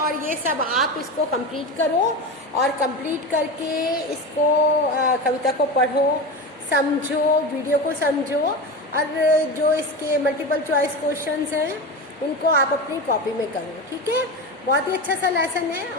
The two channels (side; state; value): both; normal; correlation 0.24